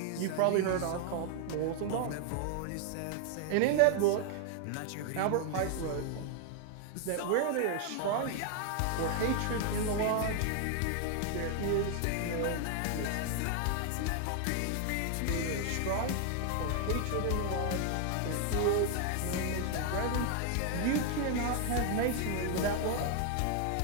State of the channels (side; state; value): both; different; correlation 0.00